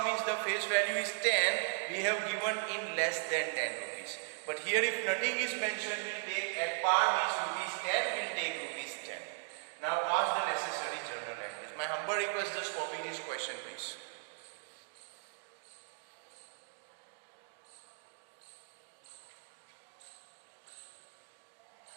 means the face value is 10, we have given in less than 10 rupees. But here if nothing is mentioned, we'll take at par means rupees 10, we'll take rupees 10. Now pass the necessary journal entries. My humble request, just copy this question please.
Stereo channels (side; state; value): left; silent; 53 dB below the other